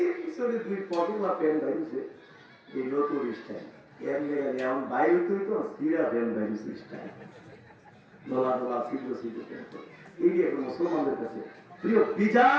পিছনে 2 পকেট বা প্যান্ট বাইরেছে এই নতুন স্টাইল, এর লেগে এমন বাইরে তুই তো সিরা প্যান্ট বাইরেছে স্টাইল, নোলা নোলা সিদ্ধ সিদ্ধ প্যান্ট। এই যে এখন মুসলমানদের কাছে প্রিয়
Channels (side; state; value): both; identical; correlation 1.00